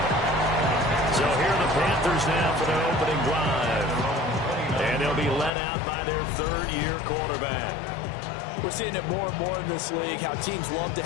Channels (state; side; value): drops out; right; at 5.5 s